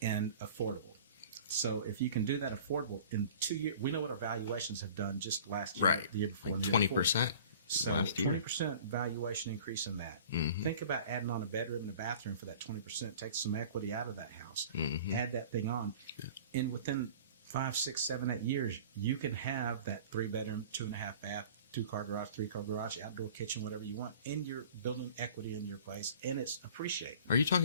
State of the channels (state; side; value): inverted; both; correlation -0.44